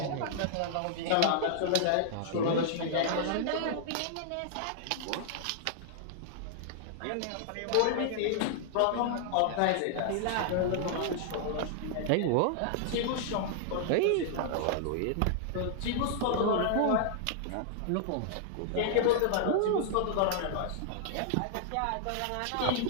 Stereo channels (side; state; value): both; different; correlation -0.01